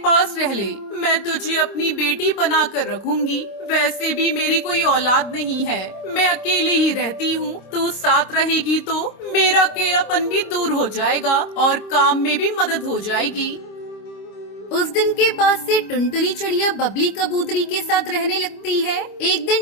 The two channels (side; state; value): right; late; 25 ms